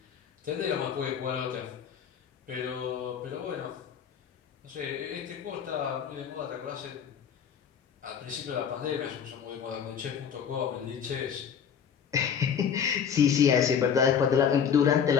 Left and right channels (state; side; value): quieter; right; 7.6 dB